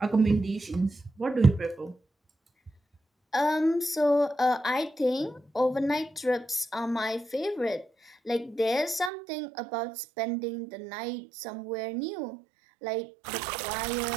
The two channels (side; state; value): left; drops out; at 9.1 s